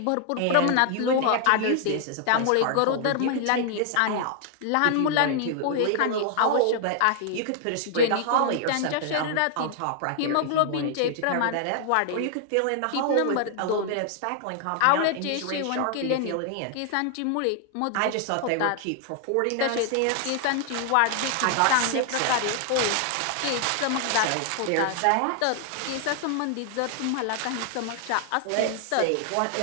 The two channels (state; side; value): different; both; correlation 0.00